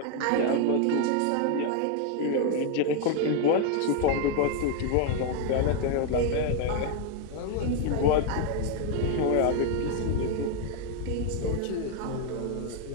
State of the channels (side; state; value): both; different; correlation 0.01